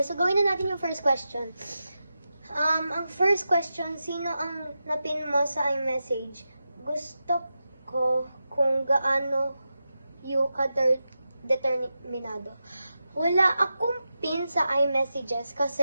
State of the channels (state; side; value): inverted; both; correlation -0.90